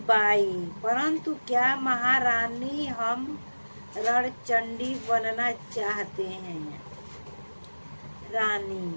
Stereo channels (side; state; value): both; inverted; correlation -1.00